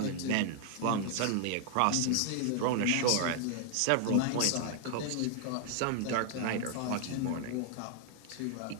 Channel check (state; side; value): different; both; correlation 0.00